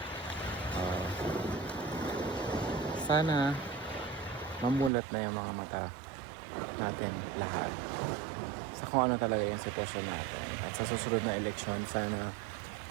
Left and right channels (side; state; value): left; drops out; at 4.9 s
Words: Ah, sana mamulat na yung mga mata natin lahat sa kung ano talaga yung sitwasyon natin. At sa susunod na eleksyon, sana